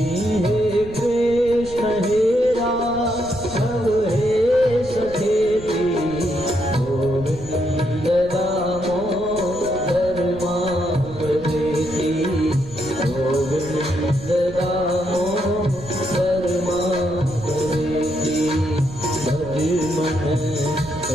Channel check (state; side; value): noise; right; rumble, 15 dB below the sound